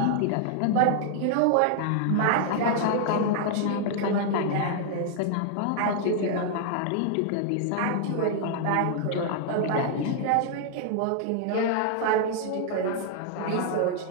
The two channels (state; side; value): different; both; correlation 0.00